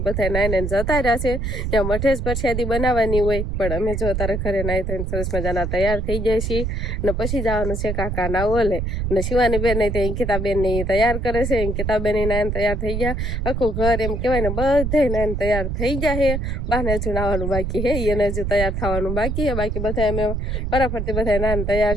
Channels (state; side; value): noise; right; rumble, 2 dB below the sound